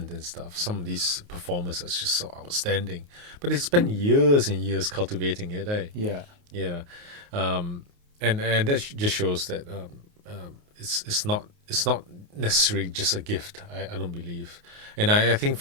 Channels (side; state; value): left; late; 28 ms